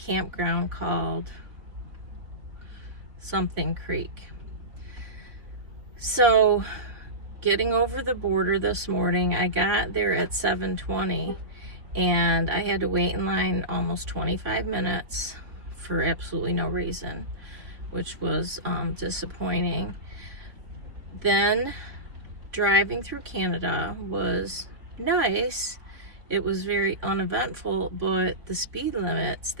called something Creek. So, getting over the border this morning, I got there at 7:20. And I had to wait in line almost 25 minutes for absolutely no reason, which was disappointing. Then driving through Canada was nice. It was very uneventful, but the speed limits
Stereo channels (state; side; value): late; left; 3.3 ms